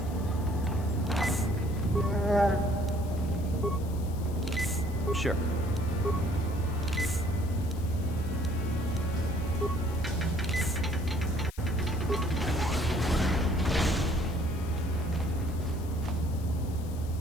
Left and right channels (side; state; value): left; noise; hiss, 20 dB below the sound